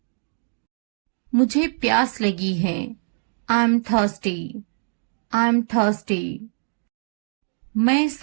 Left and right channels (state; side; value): silent; left; digital silence